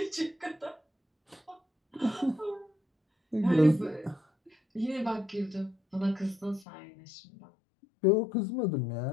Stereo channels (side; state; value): right; drops out; at 6.7 s